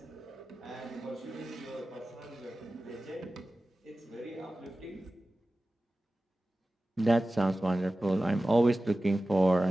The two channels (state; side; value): normal; both; correlation 0.95